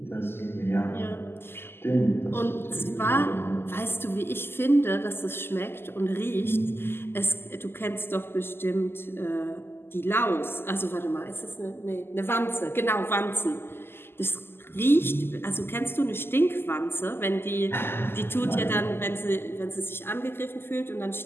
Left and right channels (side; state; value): right; late; 0.11 ms